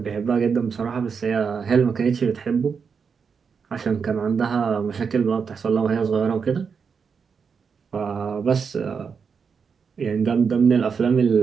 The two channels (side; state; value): left; quieter; 6.0 dB